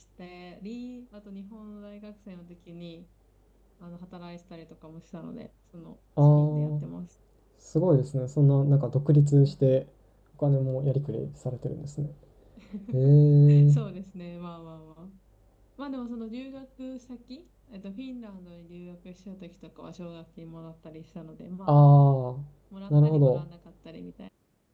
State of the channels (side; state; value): both; identical; correlation 1.00